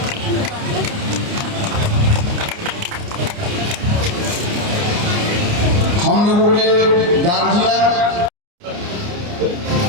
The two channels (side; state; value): left; late; 29 ms